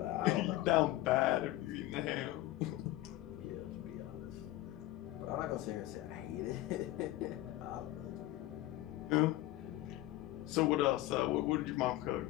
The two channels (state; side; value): quieter; right; 16.1 dB